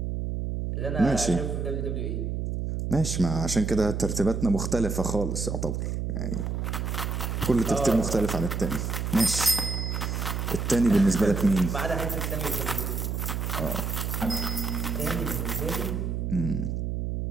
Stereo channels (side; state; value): right; noise; hum, 2 dB below the sound